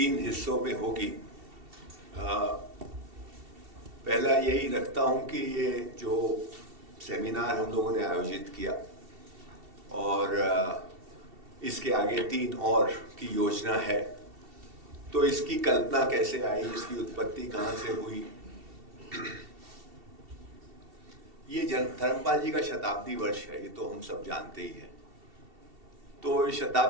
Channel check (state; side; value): late; left; 2.7 ms